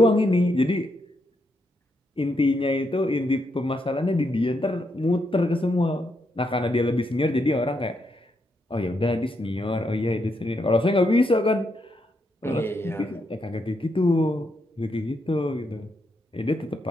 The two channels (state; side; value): normal; both; correlation 0.80